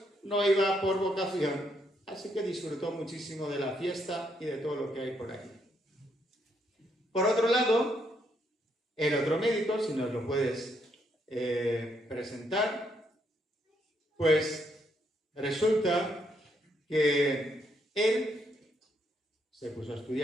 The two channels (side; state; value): both; normal; correlation 0.75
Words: no iba por vocación, así que disfrutó muchísimo de la fiesta y de todo lo que hay por ahí. Por otro lado, el otro médico, si nos lo puedes presentar, pues resulta que él se puso a